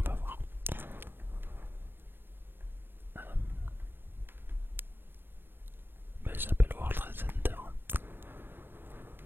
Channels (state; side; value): late; left; 0.099 ms